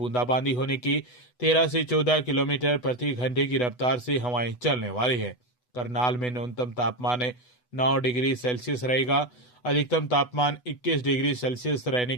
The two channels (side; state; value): right; late; 8.1 ms